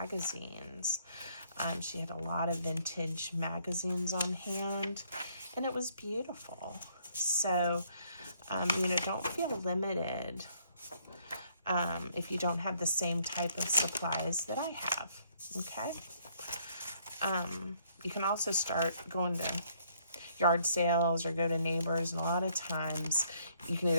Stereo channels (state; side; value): inverted; both; correlation -0.67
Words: She had a lot of vintage magazines on hand, and it was beautiful. So, you know, don't feel limited if you don't have the same type of supplies that I have, okay? You can also start going to yard sales or go to neighbors, and a lot of times you can